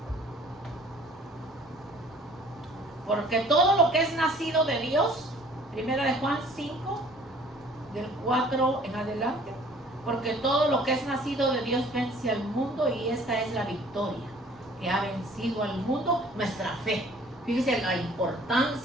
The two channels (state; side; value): normal; both; correlation 0.53